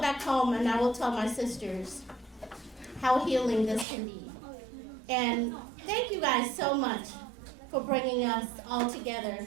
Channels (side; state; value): left; drops out; at 3.9 s